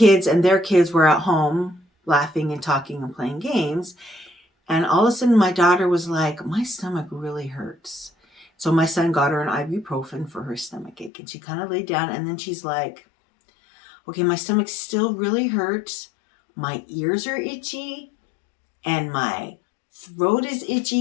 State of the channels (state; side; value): drops out; right; at 11.1 s